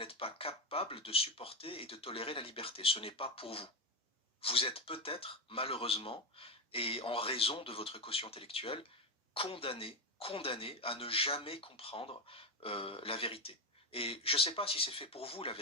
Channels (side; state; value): both; normal; correlation 0.12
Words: pas capable de supporter et de tolérer la liberté. Ce n'est pas pour vous. Vous êtes peut-être, malheureusement, et en raison de votre quotient intellectuel, condamné à ne jamais comprendre la vérité. Et je ne sais pas si c'est fait pour vous, la